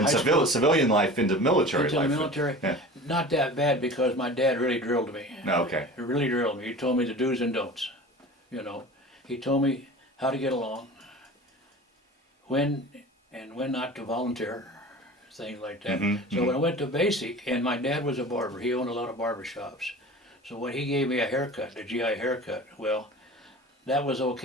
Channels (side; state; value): both; normal; correlation 0.38